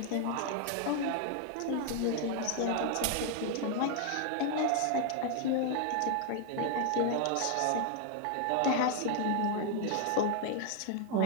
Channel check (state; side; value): different; both; correlation 0.00